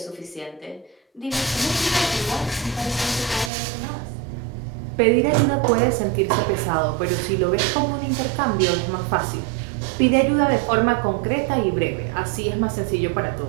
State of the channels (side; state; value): left; drops out; at 3.5 s